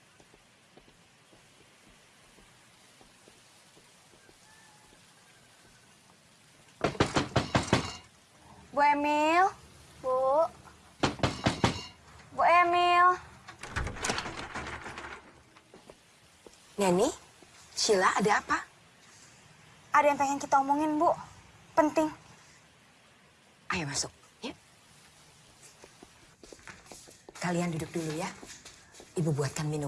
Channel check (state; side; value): identical; both; correlation 1.00